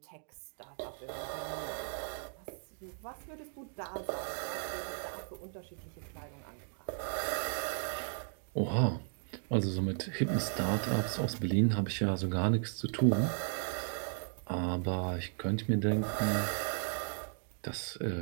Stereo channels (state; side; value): silent; left; digital silence